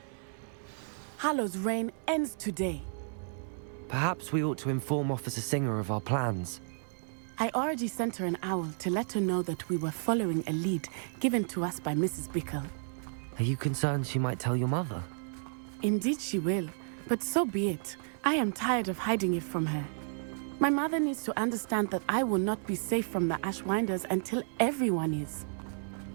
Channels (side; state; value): left; silent; digital silence